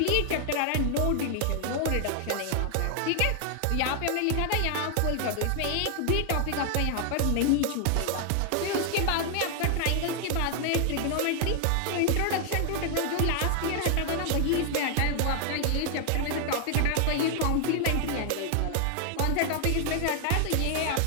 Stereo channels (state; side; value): different; both; correlation 0.00